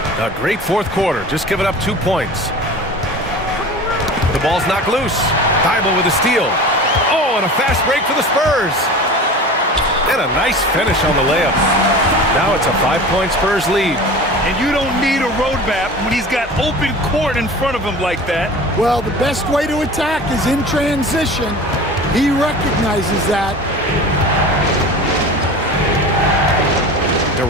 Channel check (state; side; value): normal; both; correlation 0.36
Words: A great 4th quarter, just giving up 2 points. The ball's knocked loose. Thibault with a steal. Oh, and a fast break for the Spurs. And a nice finish on the layup. Now it's a 5-point Spurs lead. And you don't need a roadmap when he's got open court in front of him like that. Well, the best way to attack is in transition. He recognizes that.